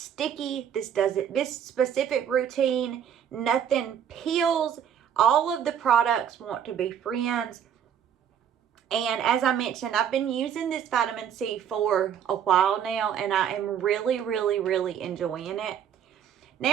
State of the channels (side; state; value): left; quieter; 8.9 dB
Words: This specific routine, nothing peels. All of the products want to be friends. And as I mentioned, I've been using this vitamin C for a while now, and I am really, really, really enjoying it.